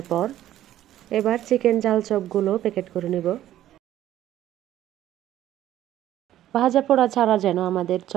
পর এবার চিকেন ঝাল চপগুলো প্যাকেট করে নিব। ভাজা পোড়া ছাড়া যেন আমাদের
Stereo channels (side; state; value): left; quieter; 12.8 dB